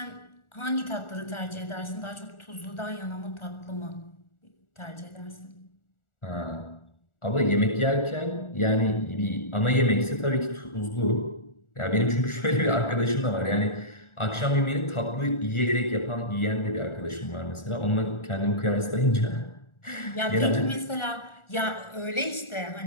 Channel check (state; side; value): late; right; 1.4 ms